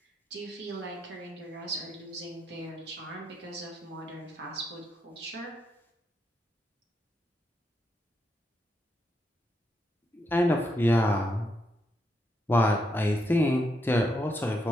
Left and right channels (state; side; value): normal; both; correlation 0.80